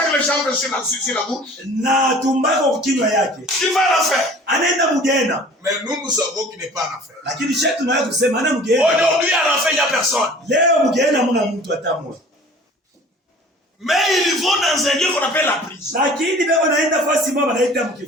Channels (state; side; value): normal; both; correlation 0.46